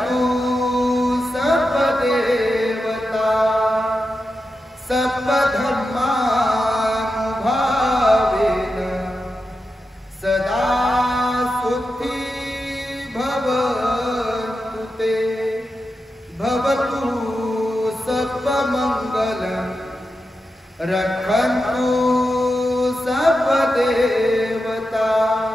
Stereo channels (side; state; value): both; normal; correlation 0.89